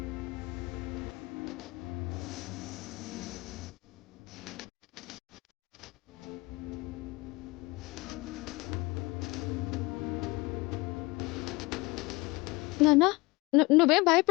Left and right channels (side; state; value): right; quieter; 23.7 dB